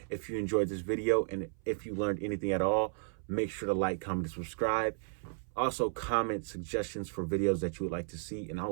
If you enjoyed this video, and if you learned anything at all, make sure to like, comment, and subscribe. Also, comment suggestions for videos that you would like to see, and I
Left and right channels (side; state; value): left; silent; 55 dB below the other